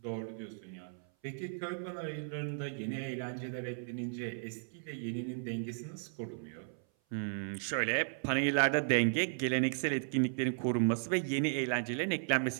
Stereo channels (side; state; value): left; silent; 54 dB below the other